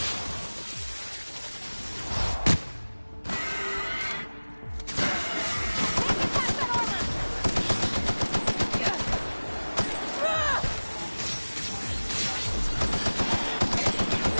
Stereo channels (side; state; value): both; inverted; correlation -1.00